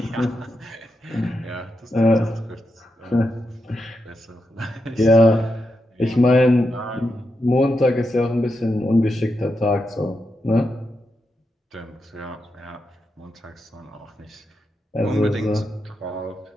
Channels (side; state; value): both; normal; correlation 0.86